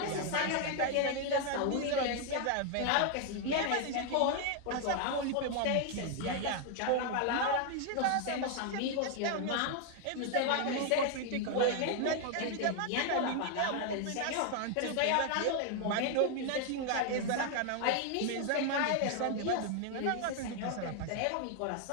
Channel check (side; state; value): both; different; correlation 0.00